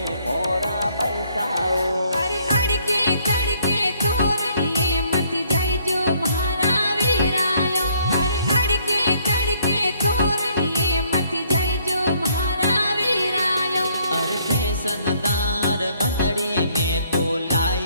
मोरा बैसाओ। अरे अड़के तड़के तोरणिए मत जाय जो महारा वीरायो। अरे अड़के तड़के तोरणिए मत जाय जो महारा वीरायो। अरे फैशनदार बंदड़ी में तो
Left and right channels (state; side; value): inverted; both; correlation -0.65